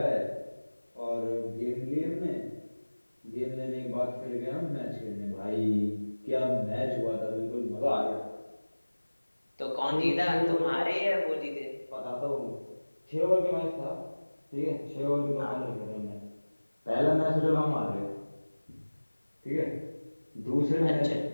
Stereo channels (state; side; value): inverted; both; correlation -1.00